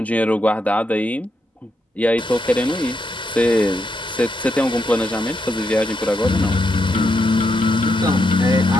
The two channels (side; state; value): both; normal; correlation 0.81